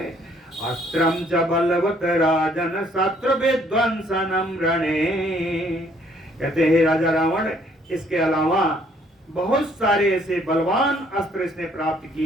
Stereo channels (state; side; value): normal; both; correlation 0.64